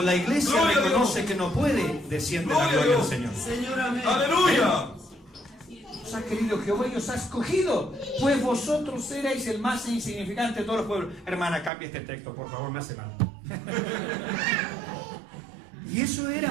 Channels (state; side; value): drops out; left; at 11.7 s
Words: la iglesia reconoce que no puede, desciende la gloria del Señor. ¡Aleluya! Os ha querido Jehová y os ha escogido, pues vosotros erais el más insignificante de todos los pueblos. Hermana, cambia este texto, por favor, me hace mal. Y eso